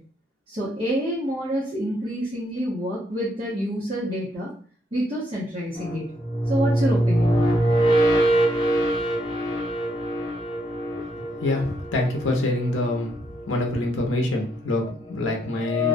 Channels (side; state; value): both; normal; correlation 0.74